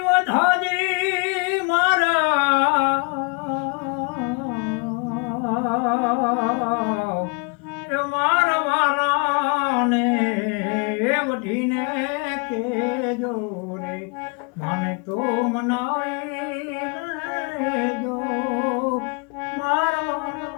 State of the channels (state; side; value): quieter; right; 34.0 dB